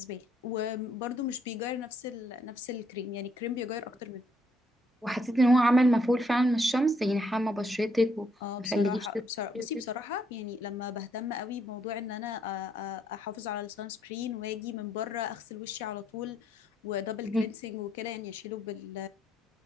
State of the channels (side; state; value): both; normal; correlation 0.72